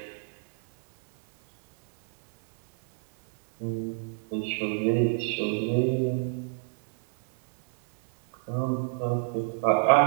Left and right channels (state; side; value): silent; left; 60 dB below the other